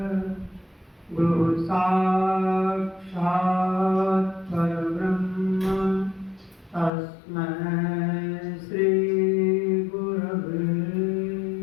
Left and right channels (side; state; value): right; drops out; at 6.9 s